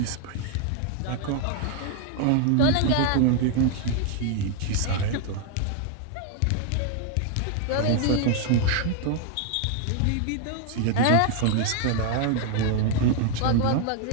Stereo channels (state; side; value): different; both; correlation 0.00